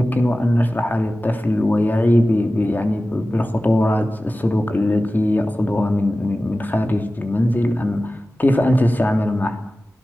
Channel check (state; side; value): normal; both; correlation 0.96